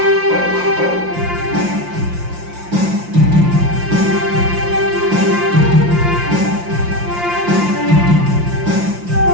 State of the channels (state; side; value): late; left; 5.7 ms